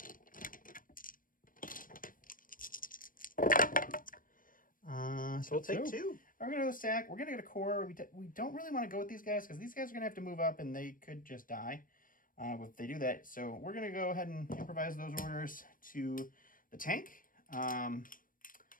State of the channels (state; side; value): late; right; 0.40 ms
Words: So we'll take 2. We're going to go stack. We're going to get a core. We don't really want to go with these guys because these guys are going to have to move up and they could just die if they do that. So we're going to go ahead and improvise those orders to the tank. And